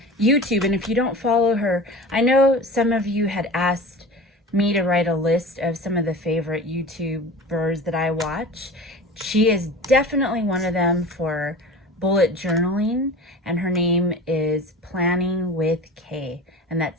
YouTube. And if you don't follow her, I know some of you had asked me to write a list of some of the favorite YouTubers that I watch. She is definitely one of them for bullet journaling, and her name is Planning with Kay, and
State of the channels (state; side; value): normal; both; correlation 0.35